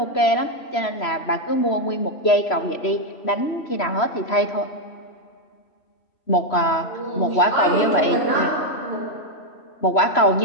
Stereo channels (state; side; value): late; right; 3.0 ms